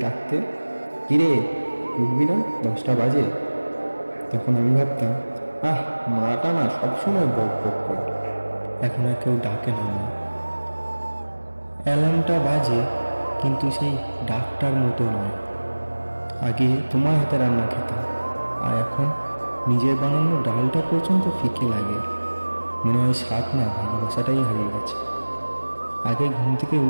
ডাকতে, কিরে উঠবি না, 10টা বাজে। তখন আমি ভাবতাম, মাটা না সবসময় বক বক করে। এখন আর কেউ ডাকে না মা। অ্যালার্মটা বাজে, কিন্তু সেই ডাকটার মতো নয়। আগে তোমার হাতে রান্না খেতাম, আর এখন নিজের বানানো ডালটা পর্যন্ত ফিকে লাগে। মনে হয় স্বাদ না, ভালোবাসাটাই হারিয়ে গেছে। আগে ঘুম থেকে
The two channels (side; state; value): both; inverted; correlation -1.00